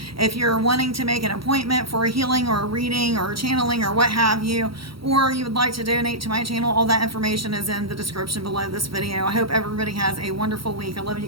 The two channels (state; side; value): late; left; 0.75 ms